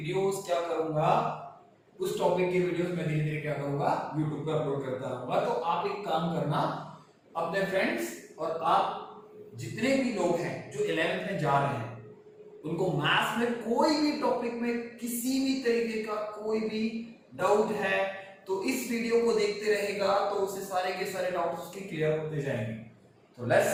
क्या करूंगा, उस टॉपिक के वीडियोस मैं धीरे धीरे क्या करूंगा, यूट्यूब पे अपलोड करता रहूंगा। तो आप एक काम करना, अपने फ्रेंड्स और आप जितने भी लोग हैं जो 11th में जा रहे हैं, उनको मैथ्स में कोई भी टॉपिक में किसी भी तरीके का कोई भी डाउट है तो इस वीडियो को देखते रहेगा तो उसे सारे के सारे डाउट्स उसके क्लियर होते जाएंगे। तो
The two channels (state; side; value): identical; both; correlation 1.00